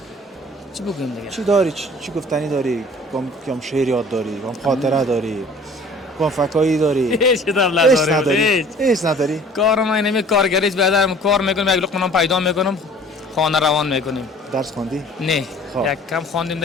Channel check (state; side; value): normal; both; correlation 0.49